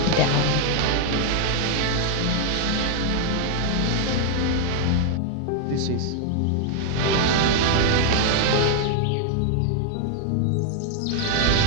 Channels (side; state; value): both; different; correlation 0.00